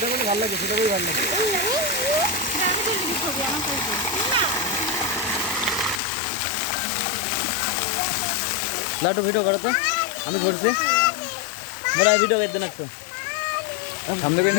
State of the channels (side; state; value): right; drops out; at 6.0 s